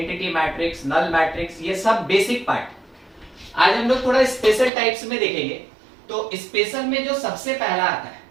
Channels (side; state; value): left; drops out; at 4.7 s